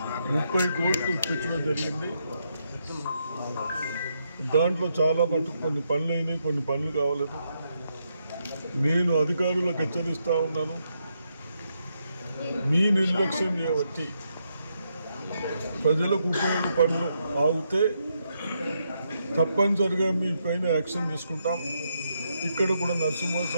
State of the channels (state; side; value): inverted; both; correlation -0.80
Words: 30 కోట్లు ఇప్పించడం జరిగింది. దాంట్లో చాలా మటుకు కొన్ని పనులు అయినాయి, కొన్ని పనులు కావలేదు. నేను అధికారులకు హెచ్చరిస్తూ ఉన్నాను, మీ నిర్లక్ష్యం చేయబట్టి ప్రజలకు ఉపయోగ పనులు ఆగితే తప్పనిసరిగా మీ పైన యాక్షన్ తీసుకుంటాం. ఇక్కడ కూడా